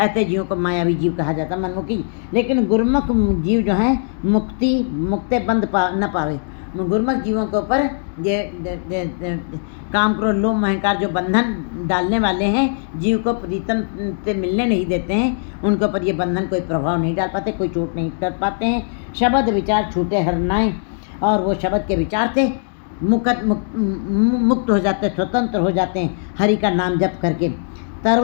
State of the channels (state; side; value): silent; right; digital silence